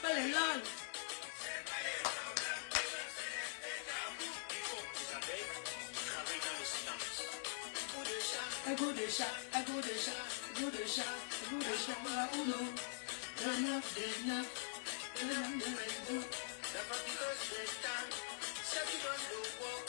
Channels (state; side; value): silent; right; digital silence